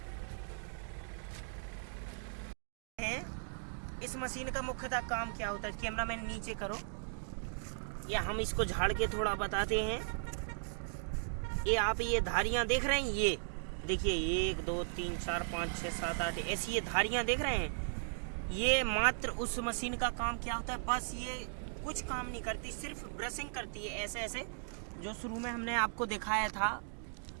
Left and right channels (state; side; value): silent; left; digital silence